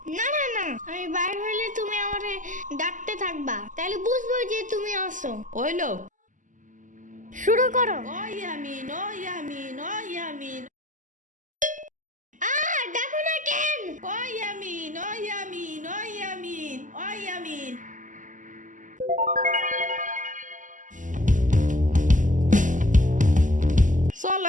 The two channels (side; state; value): left; late; 0.37 ms